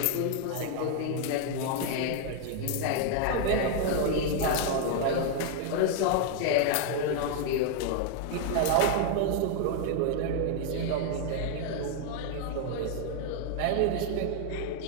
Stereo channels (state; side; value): different; both; correlation 0.00